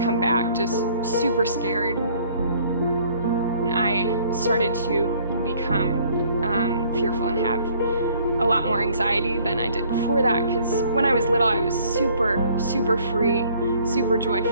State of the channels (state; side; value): inverted; both; correlation -0.59